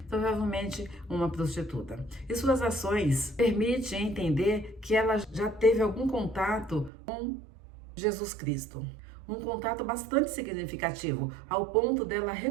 provavelmente uma prostituta. E suas ações permitem entender que ela já teve algum contato com Jesus Cristo. Um contato bastante significativo, ao ponto dela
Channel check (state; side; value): drops out; left; at 6.9 s